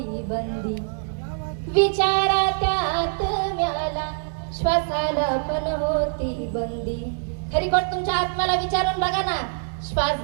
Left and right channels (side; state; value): left; silent; digital silence